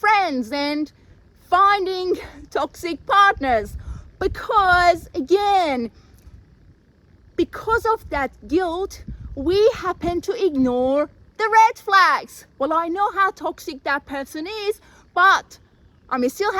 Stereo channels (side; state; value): both; identical; correlation 1.00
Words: and finding toxic partners. Because again, because of that guilt, we happen to ignore the red flags. Well, I know how toxic that person is, but I'm still